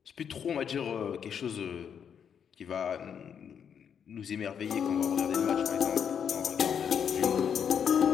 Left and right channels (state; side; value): quieter; right; 7.8 dB